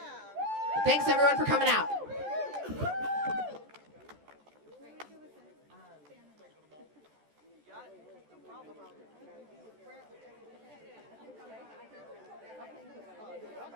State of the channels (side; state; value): left; late; 14 ms